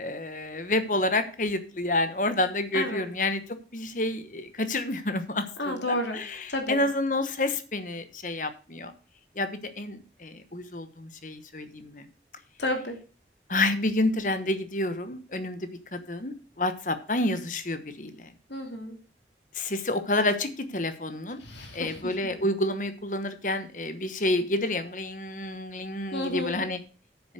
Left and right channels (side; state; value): both; normal; correlation 0.21